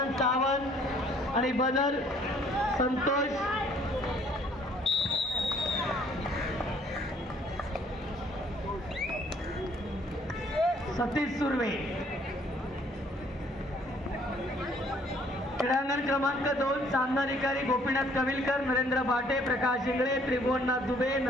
सावंत आणि बदर संतोष सतीश सुर्वे। क्रीडांगण क्रमांक 2 सामनाधिकारी गोपीनाथ कविलकर, नरेंद्र भाटे, प्रकाश इंगळे, त्रिभुवननाथ दुबे,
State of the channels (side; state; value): both; normal; correlation 0.61